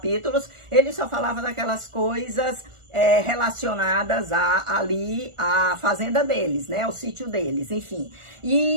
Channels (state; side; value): late; left; 1.4 ms